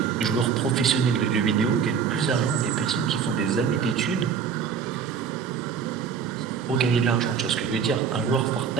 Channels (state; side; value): quieter; left; 6.8 dB